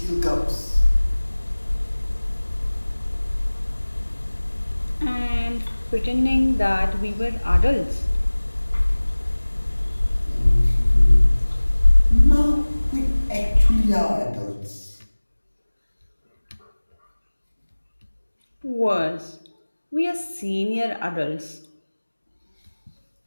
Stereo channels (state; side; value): inverted; both; correlation -1.00